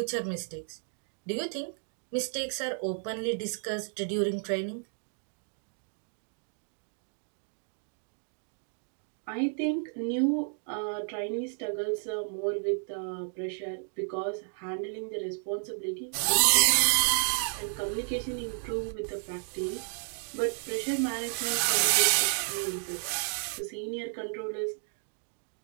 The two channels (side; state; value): left; silent; 56 dB below the other